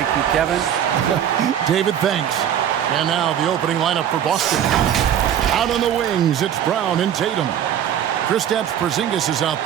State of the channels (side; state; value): left; quieter; 9.8 dB